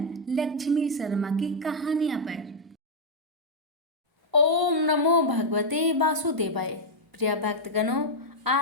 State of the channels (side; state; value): both; normal; correlation -0.04